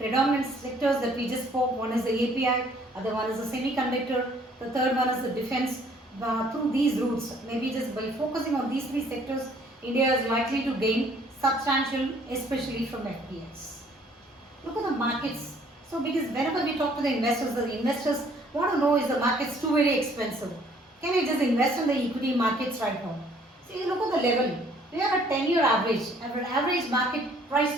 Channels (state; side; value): normal; both; correlation 0.60